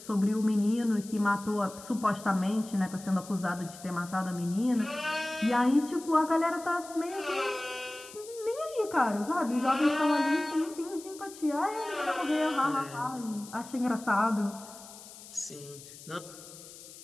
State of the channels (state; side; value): noise; left; hiss, 17 dB below the sound